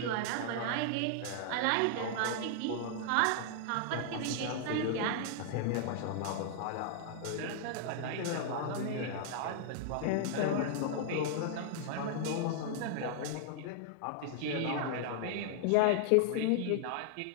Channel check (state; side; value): different; both; correlation -0.01